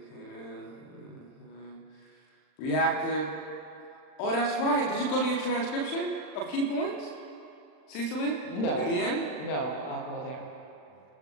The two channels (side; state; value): right; late; 39 ms